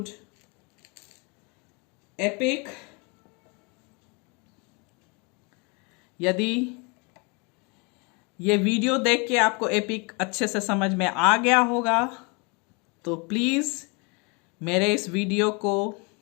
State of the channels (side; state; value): right; quieter; 31.4 dB